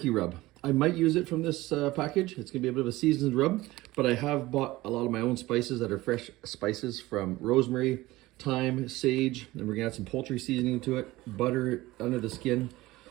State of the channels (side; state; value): left; quieter; 18.6 dB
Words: rub. I might use it from this package. It's gonna be a bit of a seasoned rub, but I have bought a lot of my own spices that are fresh spices from rosemary, thyme, sage, and we're gonna add some poultry seasoning to it, butter under the skin.